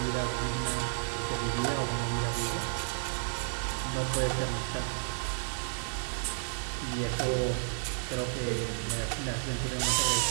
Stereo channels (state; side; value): silent; left; 56 dB below the other